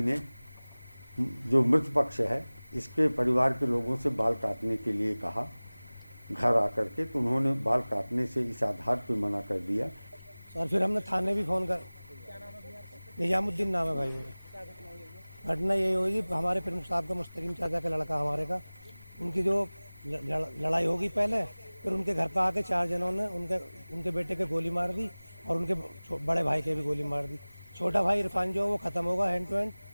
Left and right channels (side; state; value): both; inverted; correlation -1.00